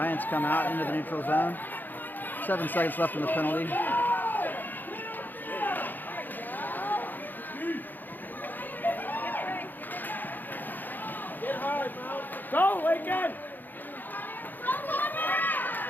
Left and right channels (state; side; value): late; right; 0.088 ms